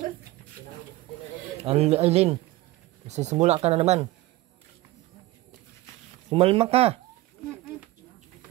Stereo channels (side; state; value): left; quieter; 17.9 dB